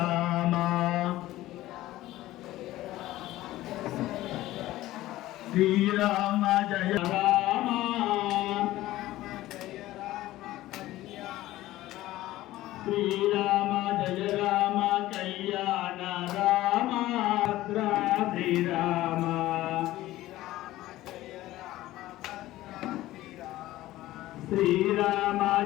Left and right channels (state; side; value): quieter; right; 16.0 dB